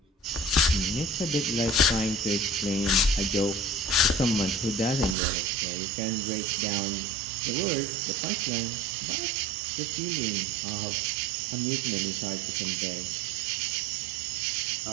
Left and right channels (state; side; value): drops out; left; at 5.2 s